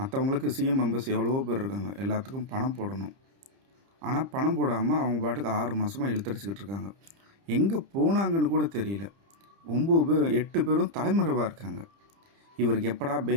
சிஎம் மெம்பர்ஸ் எவ்வளவோ பேர் இருக்காங்க, எல்லாத்துக்கும் பணம் போடணும். ஆனால் பணம் போடாமல் அவங்க பாட்டுக்கு 6 மாதமாக இழுத்தடிச்சிக்கிட்டு இருக்காங்க. எங்கே போனாங்கன்னு கூட தெரியல. 9 பேர் 8 பேரும் தலைமறைவாக இருக்காங்க. இவருக்கு எப்படா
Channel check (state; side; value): late; left; 30 ms